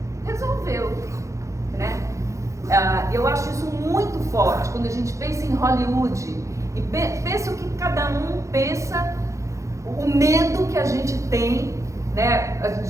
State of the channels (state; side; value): late; left; 0.15 ms